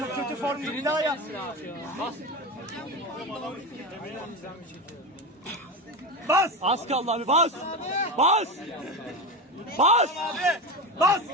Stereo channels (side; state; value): both; normal; correlation 0.21